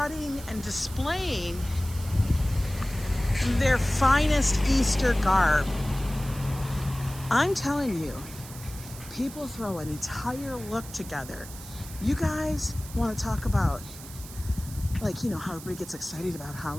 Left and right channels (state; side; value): noise; right; hiss, 15 dB below the sound